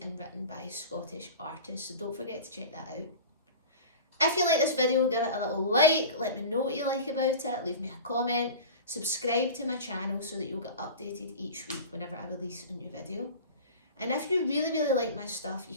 and written by Scottish artists, so don't forget to check that out. If you like this video, give it a little like, let me know what you like about it, leave me a comment, subscribe to my channel so that you'll get updated each week whenever I release a new video. And if you really like my stuff, you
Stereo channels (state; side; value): inverted; both; correlation -0.34